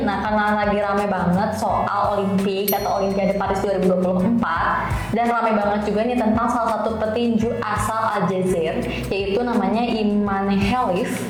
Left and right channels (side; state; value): both; identical; correlation 1.00